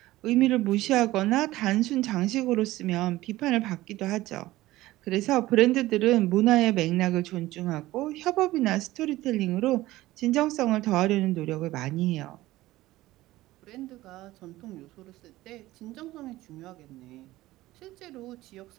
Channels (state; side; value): quieter; left; 17.1 dB